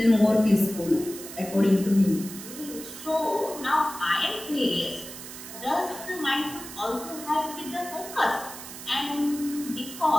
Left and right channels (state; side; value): noise; right; hiss, 12 dB below the sound